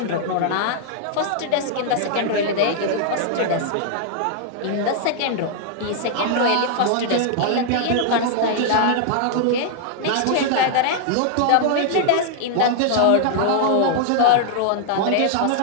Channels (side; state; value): both; different; correlation 0.00